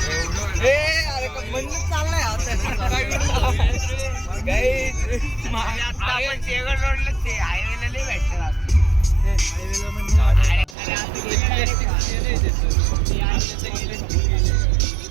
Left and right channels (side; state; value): left; drops out; at 10.8 s